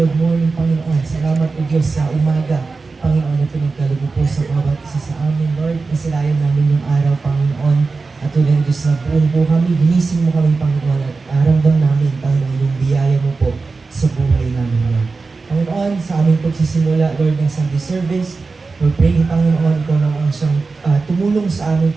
morning, Panginoon. Salamat o Diyos sa umaga, Panginoon, na pinagkalubo po sa bawat isa sa amin, Lord. Nasilayan namin yung araw, Panginoon. At tulad ng Diyos na buong po kami, ginising mo kami, Panginoon, at aramdam namin, Panginoon, yung biyaya mo po sa buhay namin, Lord. Panginoon, sa aming pagsisimula, Lord, ng Sunday service, we're praying, Panginoon, ikaw na ang siyang tumulong sa aming,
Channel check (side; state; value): left; quieter; 4.1 dB